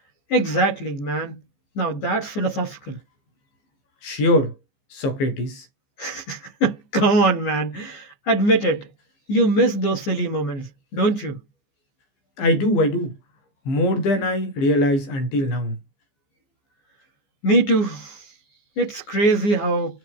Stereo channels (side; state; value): right; late; 15 ms